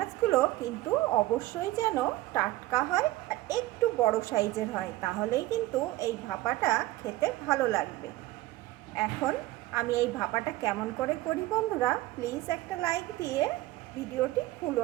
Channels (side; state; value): left; quieter; 17.2 dB